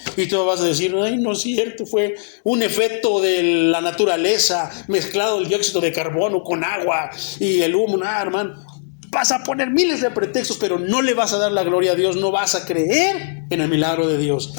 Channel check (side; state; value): right; silent; digital silence